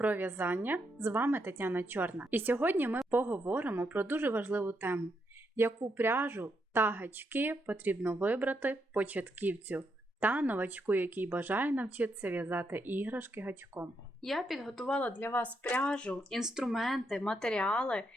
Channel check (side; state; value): both; normal; correlation 0.80